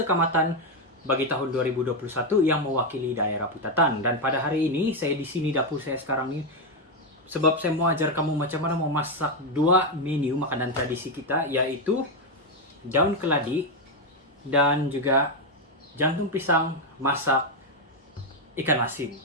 Kamatan bagi tahun 2021 yang mewakili daerah putatan. Dan pada hari ini saya di sini dapur saya sekarang ini sebab saya mau ajar kamu macam mana memasak dua menu makanan tradisi kita, yaitu daun keladi dan juga jantung pisang masak ikan asin.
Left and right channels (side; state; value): both; normal; correlation 0.05